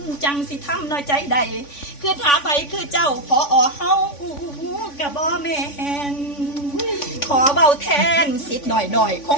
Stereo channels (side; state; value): right; late; 3.5 ms